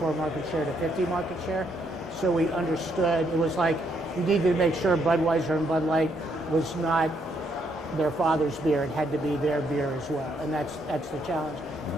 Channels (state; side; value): normal; both; correlation 0.74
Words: market share to 50 market share. So we understood, it was like you needed to make sure Budweiser and Bud Light was not their father's beer. It had to be their beer as well, and that's the challenge.